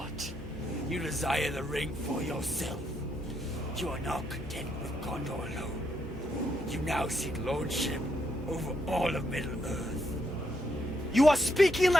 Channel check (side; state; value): both; normal; correlation 0.77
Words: You desire the ring for yourself. You are not content with Gondor alone. You now seek lordship over all of Middle-earth. You are speaking